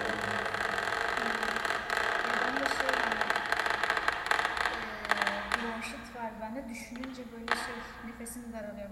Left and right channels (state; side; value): identical; both; correlation 1.00